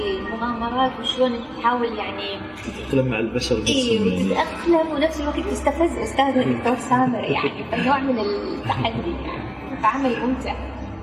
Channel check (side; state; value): both; identical; correlation 1.00